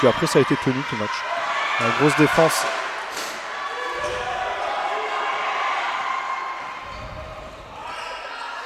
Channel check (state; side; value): identical; both; correlation 1.00